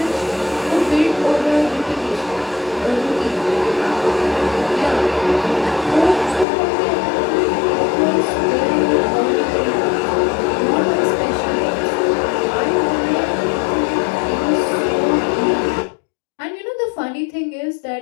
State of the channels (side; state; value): right; drops out; at 6.5 s